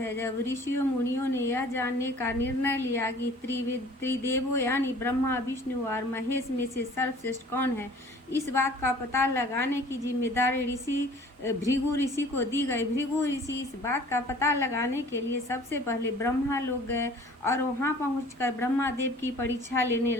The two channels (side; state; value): both; normal; correlation 0.49